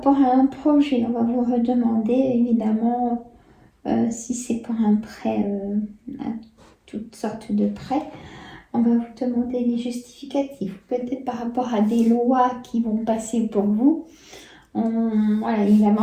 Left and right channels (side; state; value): both; identical; correlation 1.00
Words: à un projet. On va vous redemander évidemment si c'est pour un prêt, toutes sortes de prêts. On va vous demander des justificatifs, peut-être par rapport à des lois qui vont passer pour vous. Voilà, il va